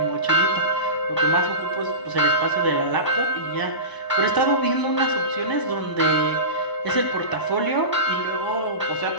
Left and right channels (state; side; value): late; right; 1.0 ms